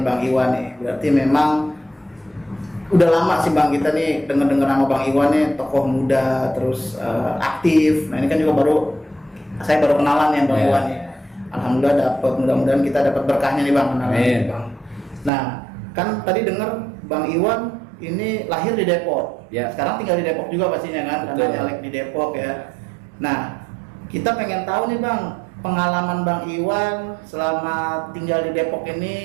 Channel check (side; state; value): left; drops out; at 15.3 s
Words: Bang Iwan nih, berarti memang udah lama sih Bang kita nih denger nama Bang Iwan nih, tokoh muda terus aktif. Nah ini kan juga saya baru kenalan ya Bang Iwan nih. Alhamdulillah dapat, mudah-mudahan kita dapat berkahnya nih Bang kenalan Bang. Nah kan tadi denger Bang Iwan ini lahir di Depok, sekarang tinggal di Depok juga pastinya kan, karena nyalek di Depok ya. Nah kita pengen tahu nih Bang, pengalaman Bang Iwan selama tinggal di Depok